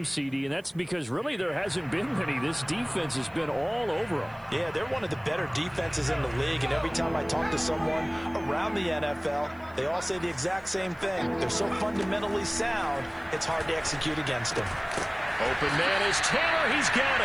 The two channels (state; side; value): noise; right; hiss, 30 dB below the sound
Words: CD, and that's because really there hasn't been many. This defense has been all over them. Yeah, they're one of the better defenses in the league, and every time I talk to someone around the NFL, they all say the exact same thing. They're so fundamentally sound, it's hard to execute against them. Open man is Taylor. He's got